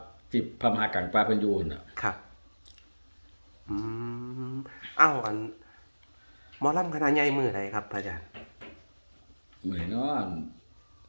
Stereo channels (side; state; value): both; inverted; correlation -1.00